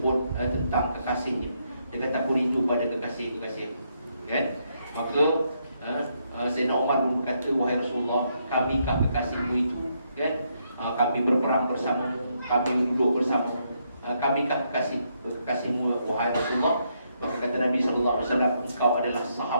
tentang kekasihnya. Dia kata, "Aku rindu pada kekasih-kekasih." Kan? Maka Sayyidina Umar pun berkata, "Wahai Rasulullah, kamikah kekasihmu itu?" Kan? Kami berperang bersama, kami duduk bersama, kamikah kekasihmu wahai Rasulullah? Maka kata Nabi SAW, "Engkau adalah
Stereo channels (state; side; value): inverted; both; correlation -0.76